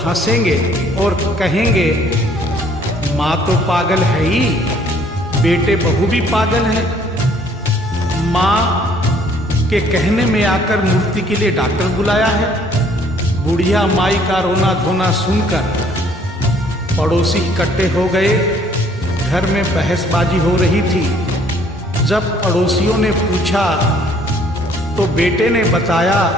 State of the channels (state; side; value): normal; both; correlation 0.61